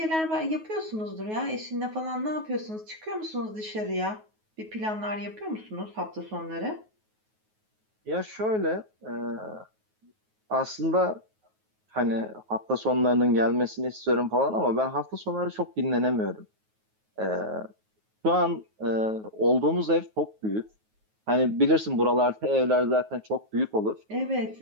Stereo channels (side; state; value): left; late; 9.4 ms